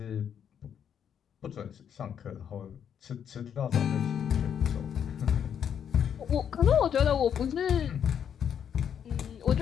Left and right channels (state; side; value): quieter; right; 8.4 dB